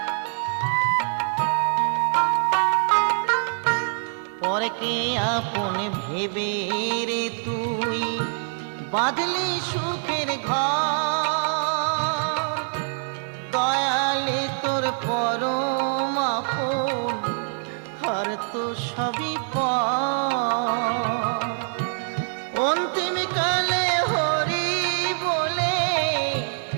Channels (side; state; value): left; silent; digital silence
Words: পরকে আপন ভেবে রে তুই বাঁধলি সুখের ঘর, দয়ালি তোর পরম আপন আর তো সবই পর। অন্তিম কালে হরি বলে